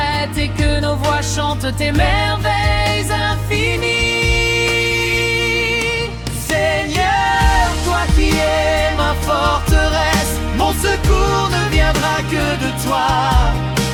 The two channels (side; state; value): both; identical; correlation 1.00